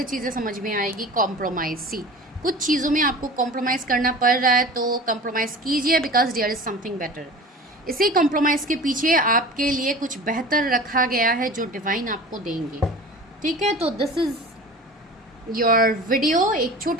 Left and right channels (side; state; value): both; normal; correlation 0.38